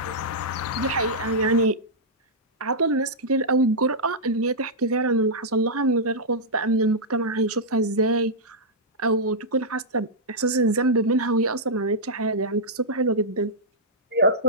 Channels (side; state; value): both; normal; correlation -0.10